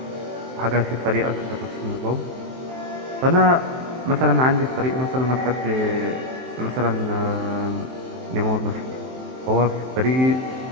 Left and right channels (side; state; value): left; late; 23 ms